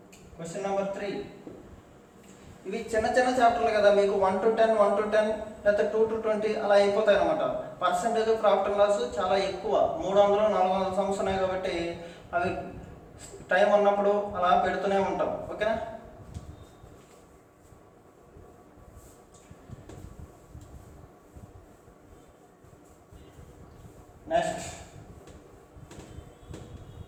Question number 3. ఇవి చిన్న చాప్టర్లు కదా, మీకు 1 to 10 లేకపోతే 2 to 20 అలా అయిపోతాయి అనమాట. పర్సంటేజ్ ప్రాఫిట్ అండ్ లాస్ చాలా ఎక్కువ, 300 400 సమ్స్ ఉన్నాయి కాబట్టి అవి టైం ఉన్నప్పుడు అలా పెడుతూనే ఉంటాం. ఓకేనా. Next,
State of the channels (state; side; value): identical; both; correlation 1.00